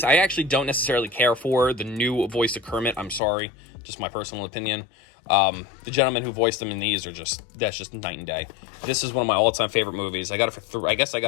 I actually don't necessarily care for the new voice of Kermit. I'm sorry. Just my personal opinion. The gentlemen who voiced them in these that's just night and day. This is one of my all-time favorite movies. I got it for I guess I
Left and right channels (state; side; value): drops out; right; at 3.2 s